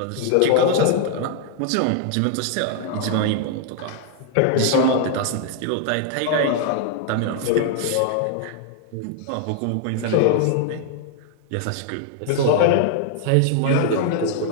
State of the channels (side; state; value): both; different; correlation 0.00